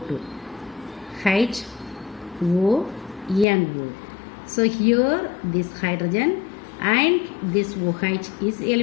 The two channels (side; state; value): right; drops out; at 3.5 s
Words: HONO. So here this hydrogen and this OH is